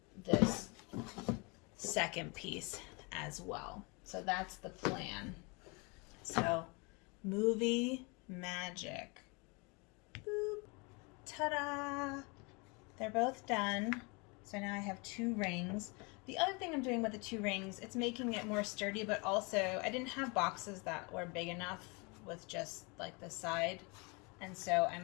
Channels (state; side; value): quieter; right; 29.9 dB